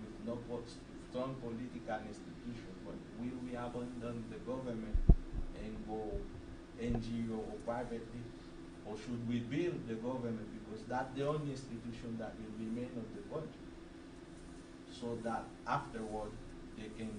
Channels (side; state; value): both; identical; correlation 1.00